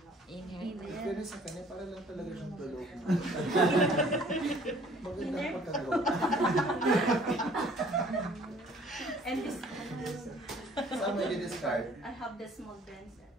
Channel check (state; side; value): normal; both; correlation 0.55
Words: Pero sa kanya, para lang talaga siyang tulog. Magandang pagkalo. And this. Saan mo i-discard? I have the small denser.